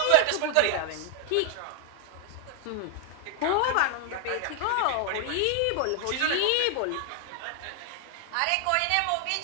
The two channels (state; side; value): different; both; correlation 0.00